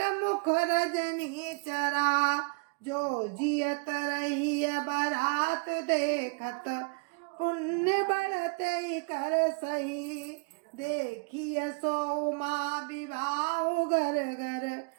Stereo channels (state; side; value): quieter; left; 33.7 dB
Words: मुख रजनी चरा। जो जियत रही बारात देखत, पुण्य बढ़ते ही कर सही। देखिए सो माँ विवाह घर घर,